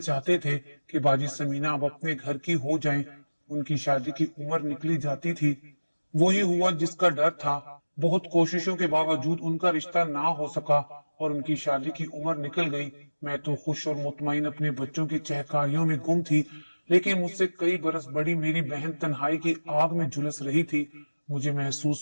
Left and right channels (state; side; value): inverted; both; correlation -1.00